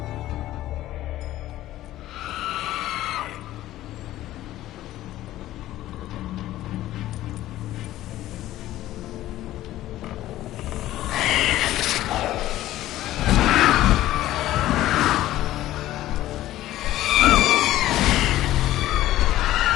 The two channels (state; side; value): quieter; right; 14.6 dB